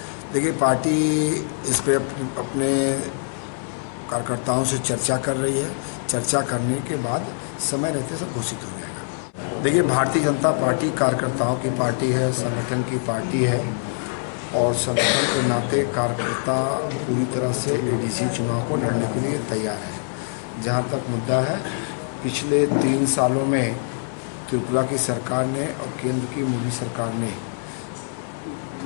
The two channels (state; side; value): silent; right; 63 dB below the other